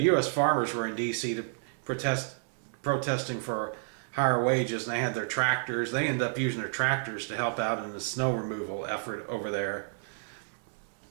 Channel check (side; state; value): left; silent; digital silence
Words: farmers were in D.C. to protesting for higher wages, and they had their tractors. They ended up using their tractors to help out in the snow removal effort over there.